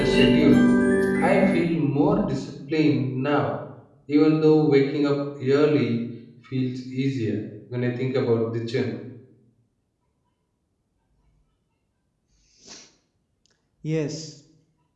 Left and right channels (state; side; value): identical; both; correlation 1.00